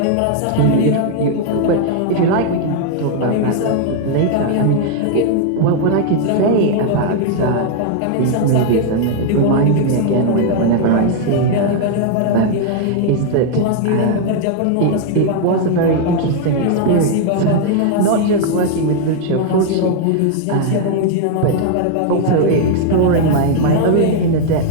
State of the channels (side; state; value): both; different; correlation 0.00